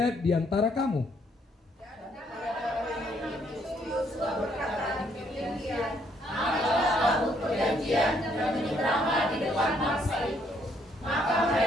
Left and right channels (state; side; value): normal; both; correlation 0.69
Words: di antara kamu.